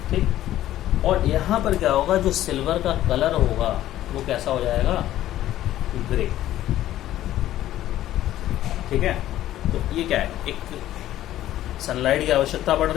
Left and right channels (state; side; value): quieter; right; 13.4 dB